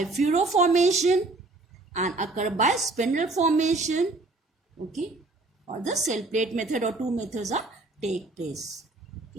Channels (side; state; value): left; quieter; 3.2 dB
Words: furrow formation and occur by spindle formation. Okay, or the cell plate method or two methods are take place.